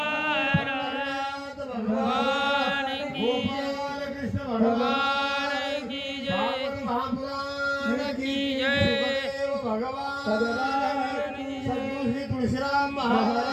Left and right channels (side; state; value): both; identical; correlation 1.00